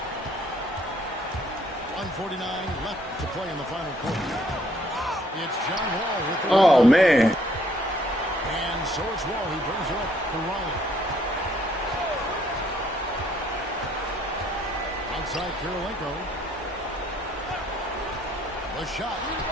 .149 left to play in the final quarter. It's John Wall with the Oh, man. And so it's Wall who brings it up for Raleigh. Outside Karolinko. The shot.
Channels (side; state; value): both; normal; correlation 0.64